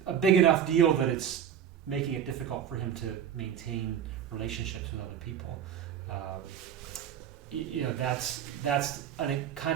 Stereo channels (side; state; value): left; quieter; 9.1 dB